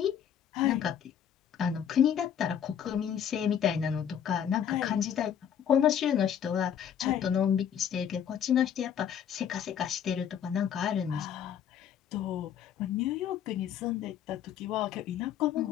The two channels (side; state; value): right; quieter; 8.9 dB